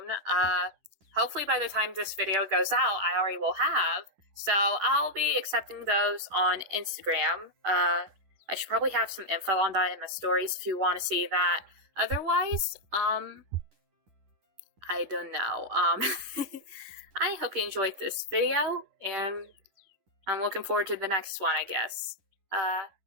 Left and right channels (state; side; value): late; left; 10 ms